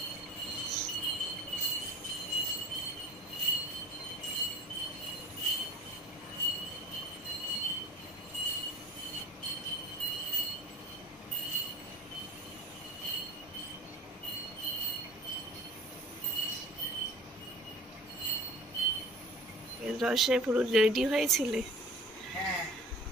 রসে পুরো রেডি হয়েছিলে?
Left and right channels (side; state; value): both; normal; correlation 0.42